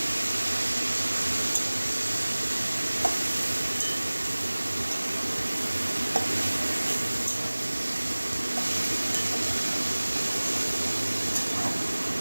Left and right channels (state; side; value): inverted; both; correlation -1.00